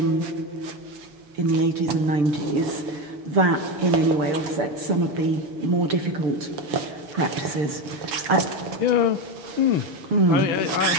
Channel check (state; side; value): late; left; 7.1 ms